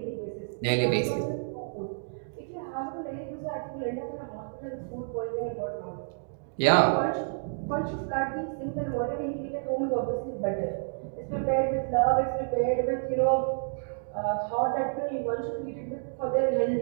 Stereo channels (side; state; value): left; silent; digital silence